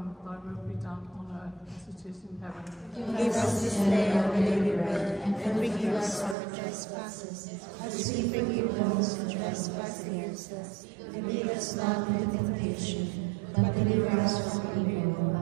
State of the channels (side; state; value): left; drops out; at 6.4 s